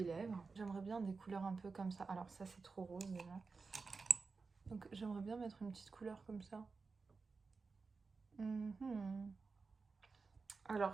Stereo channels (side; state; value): left; quieter; 4.4 dB